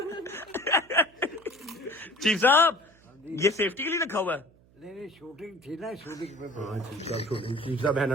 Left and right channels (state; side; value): noise; right; hum, 29 dB below the sound